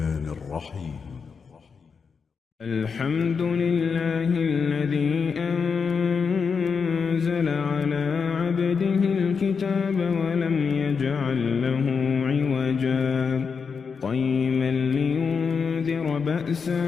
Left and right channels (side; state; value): right; quieter; 5.7 dB